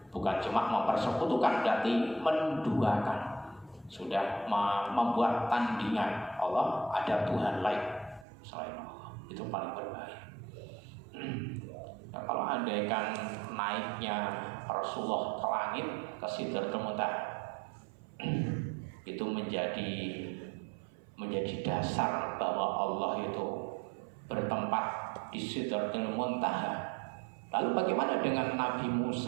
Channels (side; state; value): left; drops out; at 8.2 s